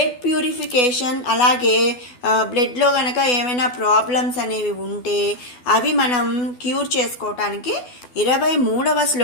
ప్యూరిఫికేషన్, అలాగే బ్లడ్లో కనుక ఏమైనా ప్రాబ్లమ్స్ అనేవి ఉంటే అవి మనం క్యూర్ చేసుకోవటానికి 23వ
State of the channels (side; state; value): right; late; 12 ms